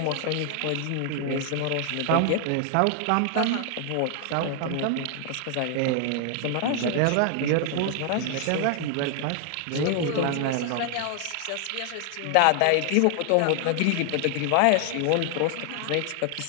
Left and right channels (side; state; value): both; different; correlation 0.00